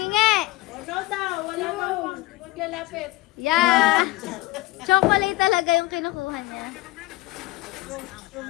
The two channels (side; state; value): right; quieter; 19.6 dB